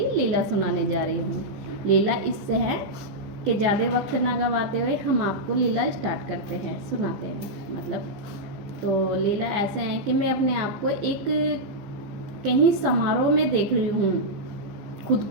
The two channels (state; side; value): late; left; 15 ms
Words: लीला सुनाने जा रही हूँ। लीला इससे है कि ज़्यादा वक्त ना गवाते हुए हम आपको लीला स्टार्ट करते हैं, सुनाते हैं। मतलब तो लीला ऐसा है कि मैं अपने आप को एक कहीं समारोह में देख रही हूँ, खुद